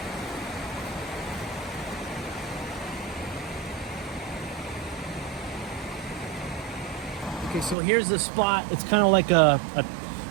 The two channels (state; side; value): drops out; left; at 7.8 s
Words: Okay, so here's the spot. It's kind of like a